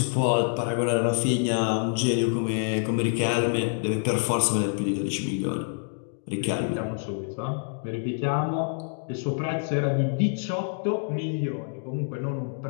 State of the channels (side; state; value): right; silent; digital silence